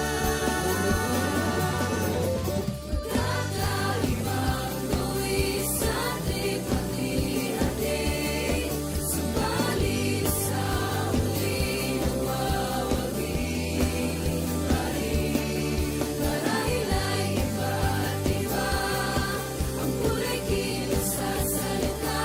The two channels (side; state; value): both; identical; correlation 1.00